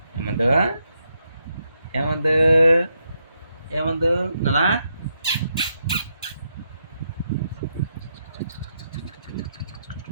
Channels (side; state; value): both; inverted; correlation -0.80